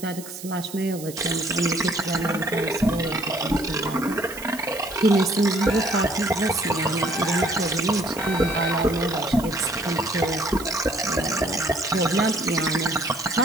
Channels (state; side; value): noise; right; hiss, 14 dB below the sound